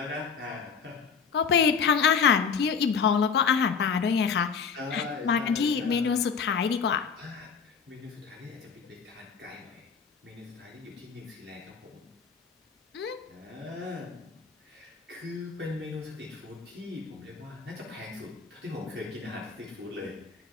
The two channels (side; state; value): right; quieter; 6.1 dB